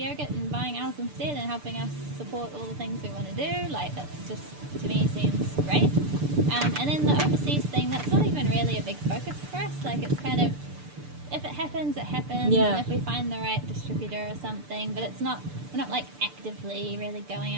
and buying ours instead and helping us support all the things we want to do. Like, that's just, to me, seems great. And then the overseas thing, that's not even really a big focus for us. Like, it's kind of, if it happens, it happens. And if we find the right distributor or something, but we're not like actively really going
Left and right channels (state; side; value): late; left; 6.8 ms